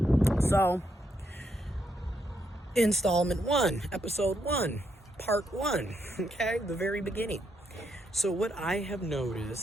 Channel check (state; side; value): normal; both; correlation 0.78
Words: So, installment 1, episode 1, part 1, okay, the very beginning. So what I have